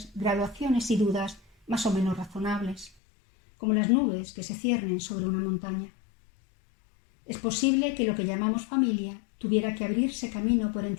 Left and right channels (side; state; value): right; drops out; at 2.9 s